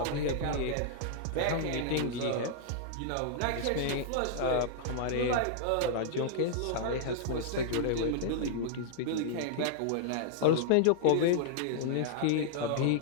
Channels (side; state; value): both; different; correlation -0.01